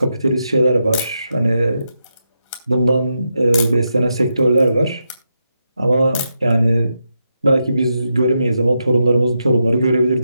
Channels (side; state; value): both; inverted; correlation -0.85